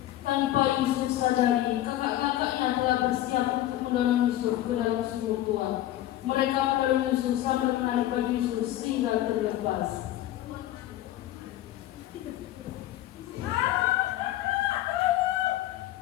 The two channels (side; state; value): right; quieter; 13.9 dB